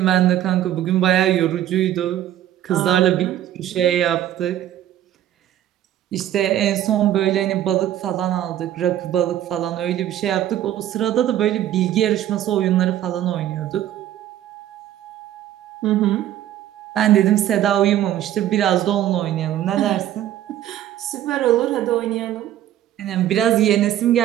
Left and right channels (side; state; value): left; quieter; 12.1 dB